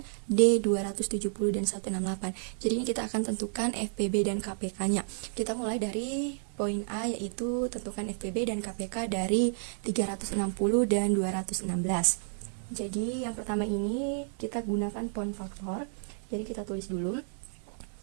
D 270 dan 168. Jadi ini kita akan tentukan FPB dan KPK-nya. Kita mulai dari poin A, yaitu tentukan FPB dan KPK dari 360 dan 216. Jadi yang pertama ini kita gunakan pohon faktor. Jadi kita tulis dulu,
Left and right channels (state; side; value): silent; left; 57 dB below the other